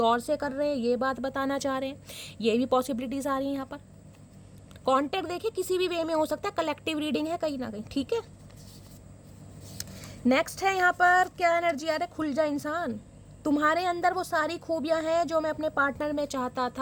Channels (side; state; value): both; identical; correlation 1.00